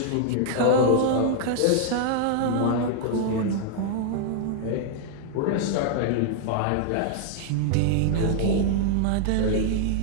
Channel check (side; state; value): both; different; correlation -0.01